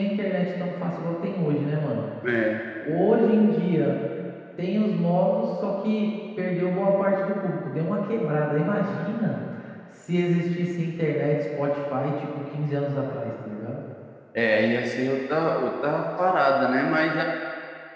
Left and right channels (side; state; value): both; identical; correlation 1.00